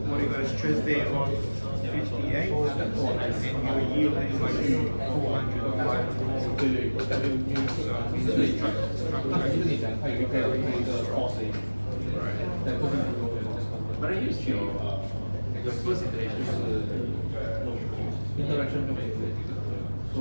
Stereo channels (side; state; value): both; inverted; correlation -1.00